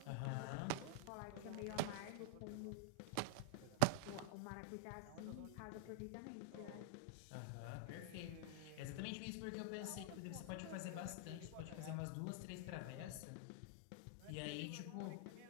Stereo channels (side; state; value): both; different; correlation -0.01